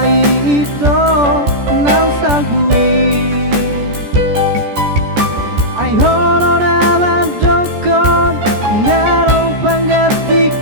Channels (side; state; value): left; late; 14 ms